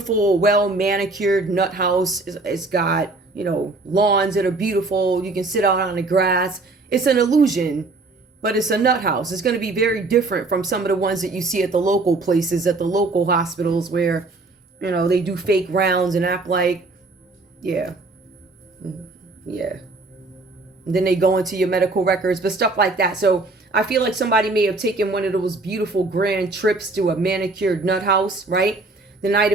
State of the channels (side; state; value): left; quieter; 3.3 dB